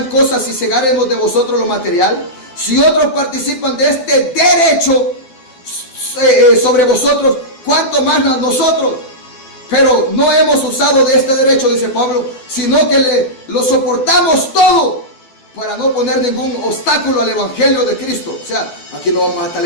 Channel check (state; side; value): late; right; 12 ms